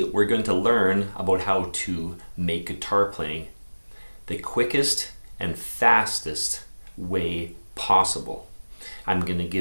we're going to learn about how to make guitar playing the quickest and fastest way possible. I'm going to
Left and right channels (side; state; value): both; inverted; correlation -1.00